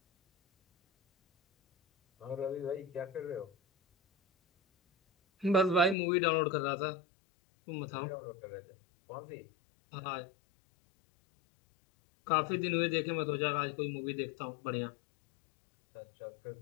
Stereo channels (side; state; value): right; drops out; at 6.0 s